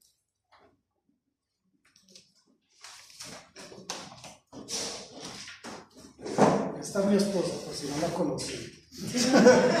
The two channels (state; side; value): identical; both; correlation 1.00